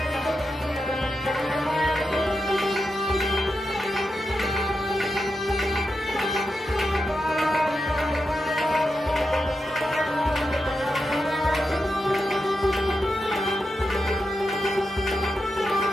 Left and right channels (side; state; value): both; normal; correlation 0.88